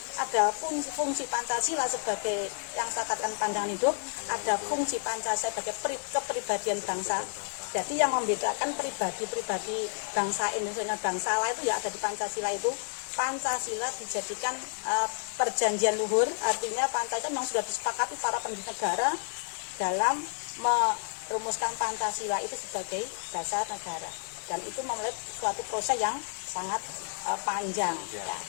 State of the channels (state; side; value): silent; right; digital silence